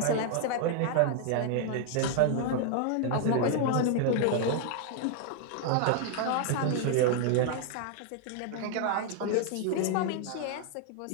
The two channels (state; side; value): different; both; correlation 0.00